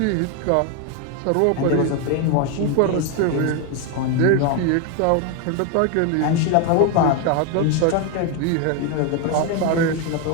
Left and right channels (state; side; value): different; both; correlation 0.01